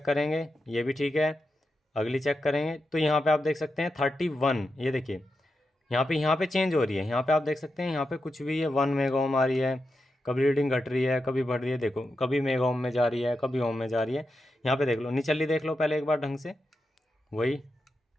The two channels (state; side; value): normal; both; correlation 0.88